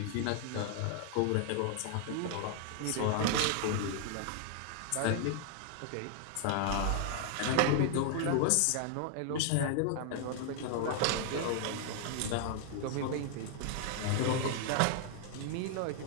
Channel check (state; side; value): different; both; correlation 0.00